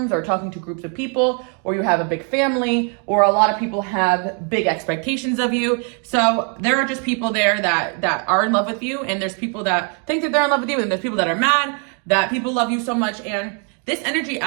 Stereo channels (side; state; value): left; quieter; 40.0 dB